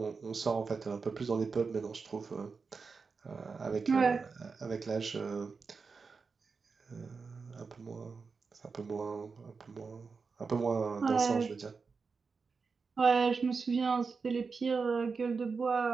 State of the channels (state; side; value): quieter; left; 4.9 dB